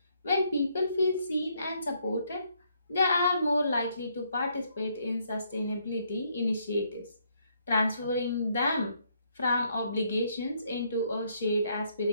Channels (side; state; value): both; inverted; correlation -0.72